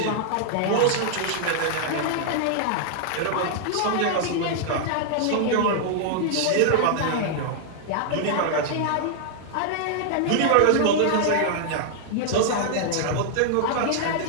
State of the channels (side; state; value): both; different; correlation -0.01